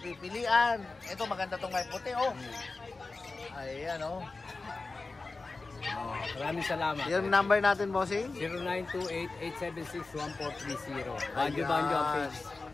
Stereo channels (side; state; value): right; quieter; 3.7 dB